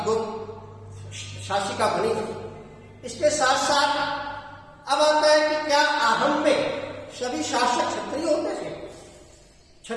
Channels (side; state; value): both; identical; correlation 1.00